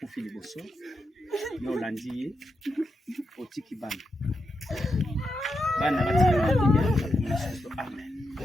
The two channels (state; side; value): normal; both; correlation 0.85